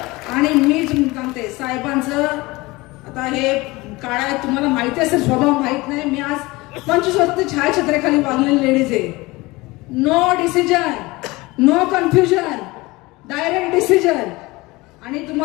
आणि मी सांगते साहेबांचं आता हे काळा तुम्हाला माहिती असेल, स्वभाव माहित नाही. मी आज 25 वर्ष छायाछत्रेखाली वागलेली लेडीज आहे. No decision, no confusion, direct decision. आणि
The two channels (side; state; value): right; quieter; 21.9 dB